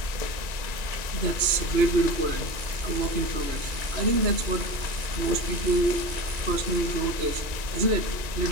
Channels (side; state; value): left; late; 1.9 ms